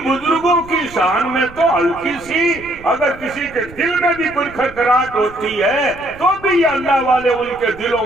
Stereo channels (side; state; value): right; noise; rumble, 19 dB below the sound